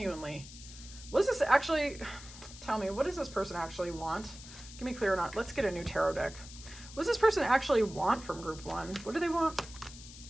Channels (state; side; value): noise; left; hiss, 16 dB below the sound